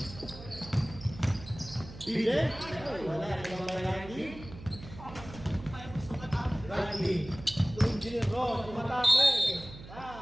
DJ? Wala, ibang ba Randy? Engineer Ron, tumatake.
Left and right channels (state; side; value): noise; right; hum, 15 dB below the sound